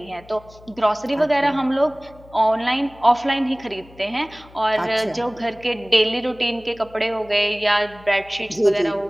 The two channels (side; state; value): left; noise; hum, 23 dB below the sound